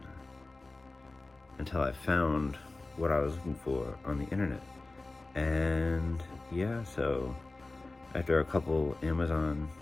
until I found what I was looking for on the internet. And yeah, so after a couple Amazon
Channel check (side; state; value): right; quieter; 3.2 dB